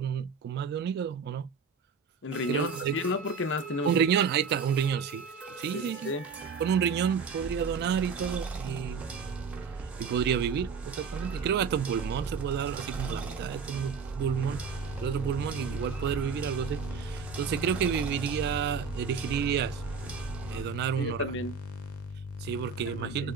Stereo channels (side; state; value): left; quieter; 5.5 dB